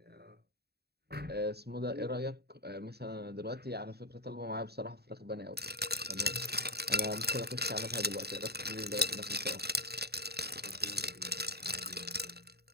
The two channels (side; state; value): left; late; 0.47 ms